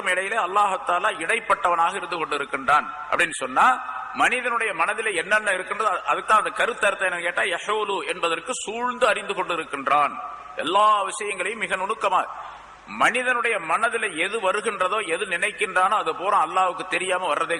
இடையிலே அல்லாஹ் தஆலா இடைப்பட்டவனாக இருந்து கொண்டிருக்கின்றான் அப்படின்னு சொன்னா, மனிதனுடைய மனதிலே என்னென்ன இருக்கின்றது அதுதான் அந்த கருத்தர்த்தம். என்ன கேட்டா, யஹூலு என்பதற்கு சூழ்ந்து அறிந்து கொண்டிருக்கின்றான். எல்லா விஷயங்களையும் மிக நுணுக்கமா மனிதனுடைய மனதில் எது வருகின்றதோ, எது நினைக்கின்றானோ அது பூரா அல்லாஹ்வுக்கு தெரியாம வர்றதே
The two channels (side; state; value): both; identical; correlation 1.00